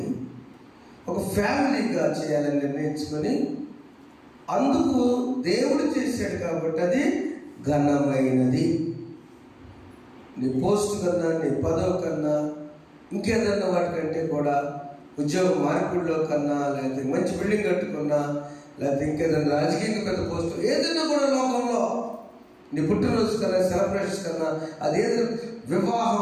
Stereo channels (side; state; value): both; identical; correlation 1.00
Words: ఒక ఫ్యామిలీగా చేయాలని నిర్ణయించుకొని అందుకు దేవుడు చేశాడు. కాబట్టి అది ఘనమైనది. నీ పోస్ట్ కన్నా, నీ పదవి కన్నా, ఇంకేదన్నా వాటికంటే కూడా, ఉద్యోగ మార్పిడిలో కన్నా, లేకపోతే మంచి బిల్డింగ్ కట్టుకున్నా, లేకపోతే ఇంకేదైనా రాజకీయంగా పెద్ద పోస్ట్ ఏదైనా కూడా లోకంలో నీ పుట్టినరోజు కన్నా, సెలబ్రేషన్స్ కన్నా, అదేదో